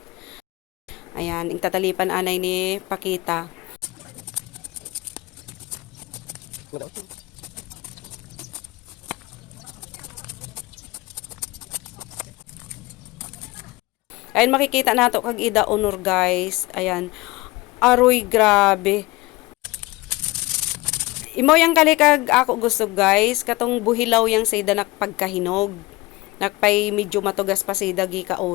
Ayan, ing tatalipan anay ni Pakita. Ayan, makikita nato kag ida honor guys. Ayan. Aroy, grabe. Imo yang kalikag ako gusto guys, katong buhilaw yang sa ida nakpagkahinog. Nakpay medyo matugas pa sa ida gi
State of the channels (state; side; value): quieter; right; 21.3 dB